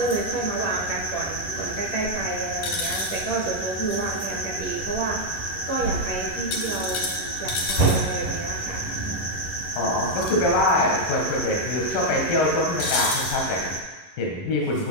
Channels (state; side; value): late; right; 11 ms